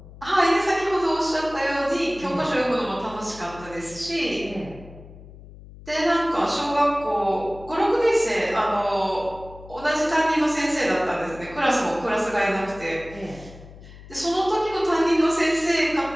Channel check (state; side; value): noise; left; hum, 18 dB below the sound